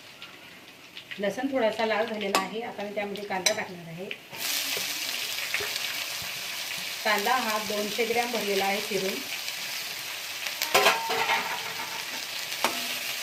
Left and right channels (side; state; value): both; identical; correlation 1.00